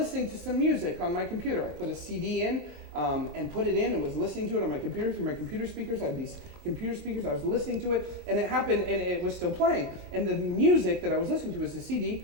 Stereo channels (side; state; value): left; late; 20 ms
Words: to some music on my computer. I put a CD in and put it in and was listening to it on my computer through my computer speakers. I had these computer speakers. I was listening to it, and it happened, and it was still playing. And the music that I was listening to was a